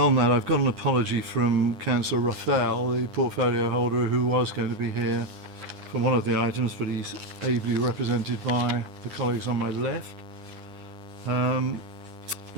that, I've got an apology from Councillor Raphael, the portfolio holder, who was going to be here for one of the items, but he's ably represented by the colleagues on my left.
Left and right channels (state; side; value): late; left; 9.8 ms